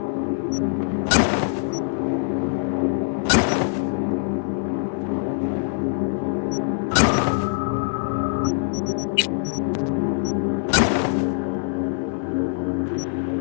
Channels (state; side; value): silent; right; digital silence